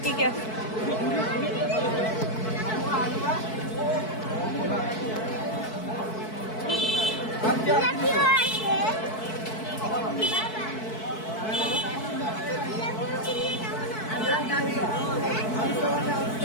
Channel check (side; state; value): right; late; 4.6 ms